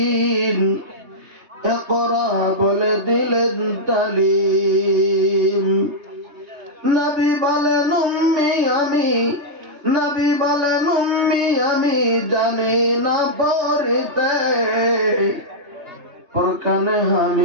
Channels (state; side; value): late; left; 3.3 ms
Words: ইকরা বলে দিলেন তালিম। নবী বলেন উম্মি আমি, নবী বলেন উম্মি আমি জানি না পড়তে। ফরকানে